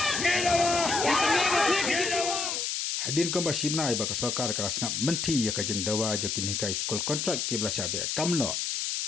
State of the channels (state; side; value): noise; left; hiss, 1 dB below the sound